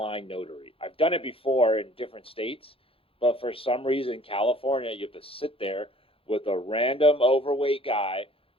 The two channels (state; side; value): late; right; 0.27 ms